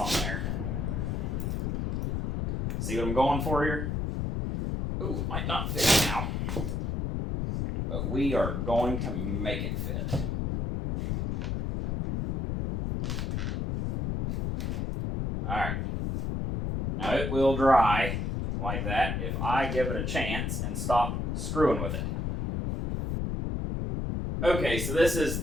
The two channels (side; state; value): left; noise; rumble, 1 dB below the sound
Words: there. See what I'm going for here? Ooh, it might not fit now. But we are going to make it fit. Alright. Now it will dry like that if I give it a chance and stop screwing with it. Okay, so this is